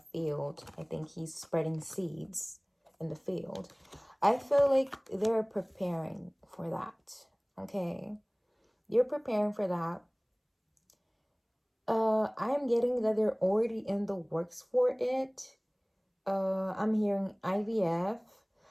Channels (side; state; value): both; identical; correlation 1.00